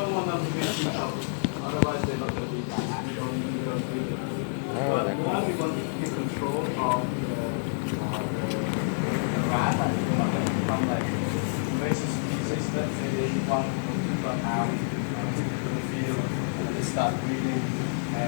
want them to be too close. Otherwise, they're not going to be that happy. You don't do it. But one, we want to keep control of the rat, from like invasive species. Let's say they want to run out to the field and they start breeding.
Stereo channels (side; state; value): right; silent; 59 dB below the other